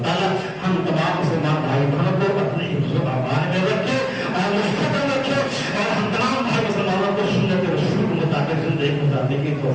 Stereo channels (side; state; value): both; identical; correlation 1.00